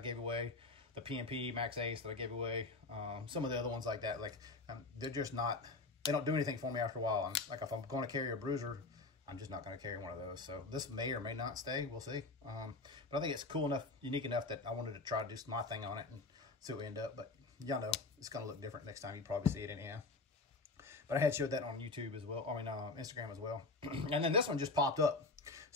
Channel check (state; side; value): quieter; right; 3.5 dB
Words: away, the PMP Max Ace that I gave away, some of the other ones like that, like they're just not they don't do anything for me after a while. Like if I'm going to carry a bruiser, I'm just not going to carry one of those. So this may or may not stay. We'll see. But I think it's cool enough, unique enough that I wanted to try to do my thing on it and see what we end up. But y'all know it's going to look different next time. You probably see it anyhow. But I had showed that on YouTube as well. I mean, Instagram as well. And then this one just popped up.